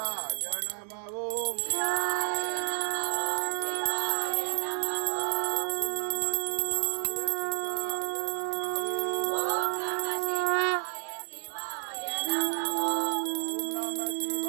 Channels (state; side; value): silent; left; digital silence